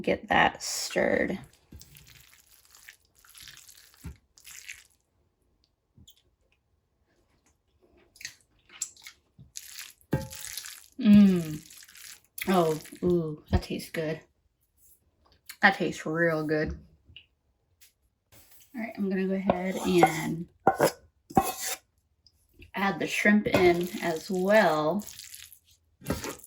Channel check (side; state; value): both; identical; correlation 1.00